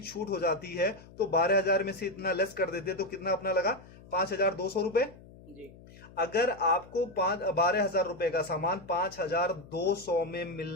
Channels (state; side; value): noise; left; hum, 21 dB below the sound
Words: छूट हो जाती है, तो 12,000 में से इतना लेस कर देते तो कितना अपना लगा? 5,200 रुपए। अगर आपको 12,000 रुपए का सामान 5,200 में